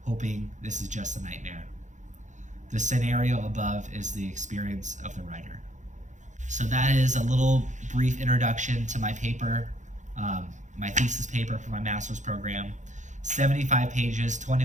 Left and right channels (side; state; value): left; late; 0.35 ms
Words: hoping this is just a nightmare. The scenario above is the experience of the writer. So that is a little brief introduction to my paper, my thesis paper for my master's program. 75 pages,